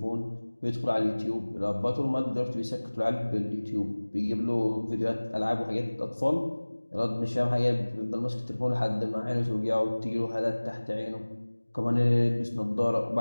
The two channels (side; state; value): both; inverted; correlation -1.00